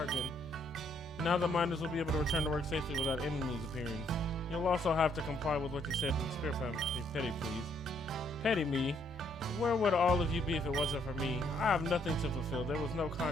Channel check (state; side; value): noise; left; rumble, 25 dB below the sound